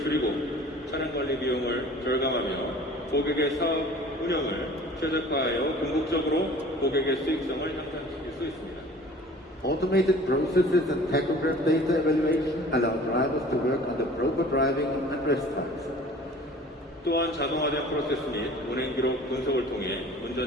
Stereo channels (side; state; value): both; normal; correlation 0.46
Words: 차량 관리 비용을 절감하며 고객의 사업 운영을 최적화하여 궁극적으로 고객의 수익성을 향상시킬 수 있습니다. Automated processes and tachograph data evaluation allow drivers to work under proper driving and rest times. 또한 자동화된 프로세스 및 운행 기록 분석을 통해